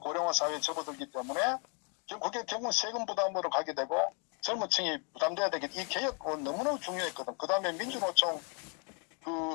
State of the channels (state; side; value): quieter; right; 37.4 dB